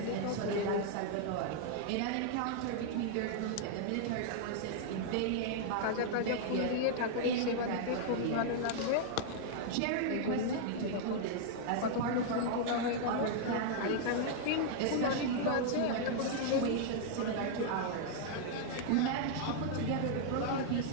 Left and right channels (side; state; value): both; different; correlation -0.01